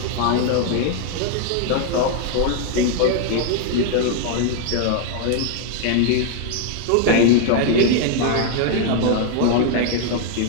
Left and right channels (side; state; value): both; different; correlation 0.00